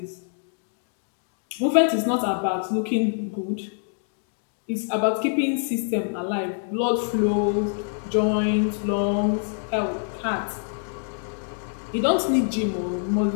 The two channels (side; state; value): right; silent; digital silence